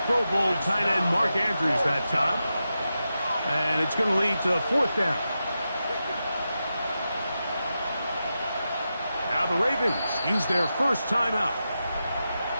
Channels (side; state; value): both; inverted; correlation -0.90